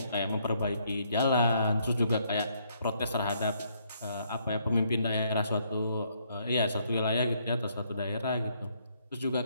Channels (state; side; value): inverted; both; correlation -0.70